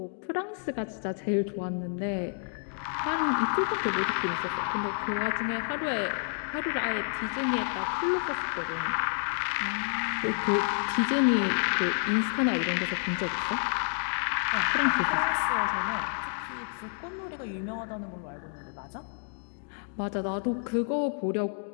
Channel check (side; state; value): right; silent; 58 dB below the other